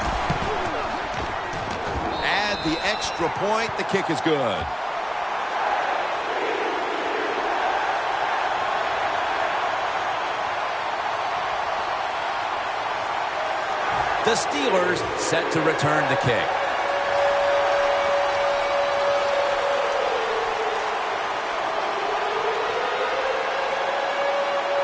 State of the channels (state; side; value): identical; both; correlation 1.00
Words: Add the extra point. The kick is good. The Steelers set to return the kick.